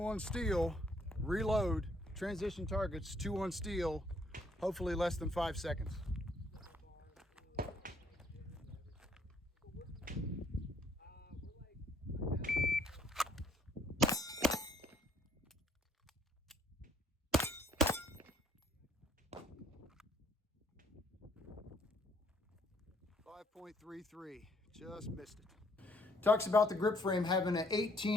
on steel, reload, transition targets, 2 on steel. Hopefully less than 5 seconds. 5.33, just missed it. Talks about the grip frame having an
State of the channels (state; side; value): normal; both; correlation 0.65